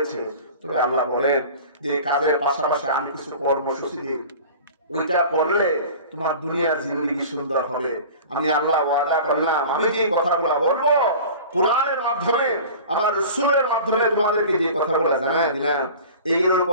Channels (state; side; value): inverted; both; correlation -0.39